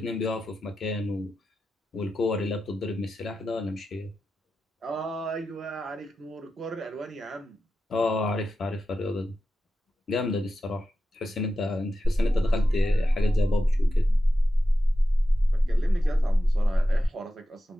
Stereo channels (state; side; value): normal; both; correlation 0.92